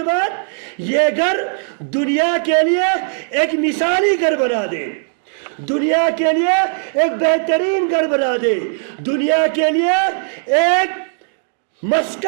بعد یہ گھر دنیا کے لیے ایک مثالی گھر بنا دے، دنیا کے لیے ایک بہترین گھر بنا دے، دنیا کے لیے ایک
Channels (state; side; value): silent; left; digital silence